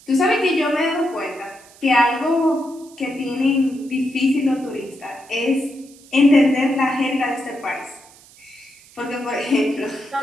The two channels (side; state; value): right; noise; hiss, 24 dB below the sound